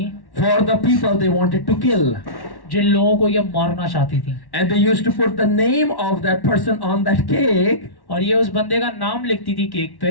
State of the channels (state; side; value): late; right; 1.1 ms